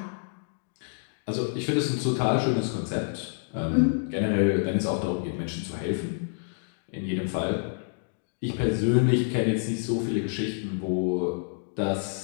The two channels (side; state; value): right; silent; digital silence